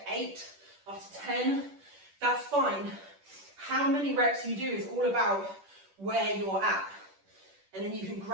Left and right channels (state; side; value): late; left; 10 ms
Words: 8, after 10, that's fine. How many reps you do is all about where you're at, and then you can